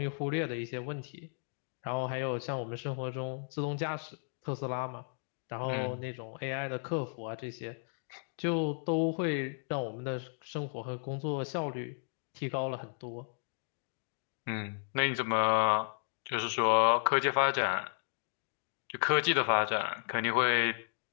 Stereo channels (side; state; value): right; silent; digital silence